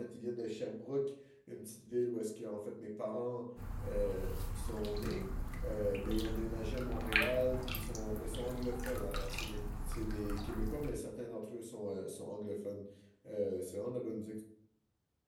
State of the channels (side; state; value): both; identical; correlation 1.00